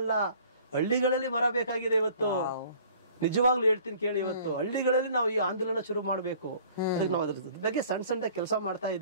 ಹಳ್ಳಿಗಳಲ್ಲಿ ಮರ ಬೇಕಾಗಿದೆ ಇವತ್ತು. ನಿಜವಾಗ್ಲೂ ಹೇಳ್ತೀನಿ ಕೇಳಿ, ಇವತ್ತು ಹಳ್ಳಿಗಳಲ್ಲಿ ನಾವು ಈ ಆಂದೋಲನ ಶುರು ಮಾಡ್ಬೇಕು. ಅದಕ್ಕೆ ನಾವು ಅದ್ರ ಬಗ್ಗೆ ಸಣ್ಣ ಕೆಲಸ ಮಾಡ್ತಾ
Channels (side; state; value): both; inverted; correlation -0.53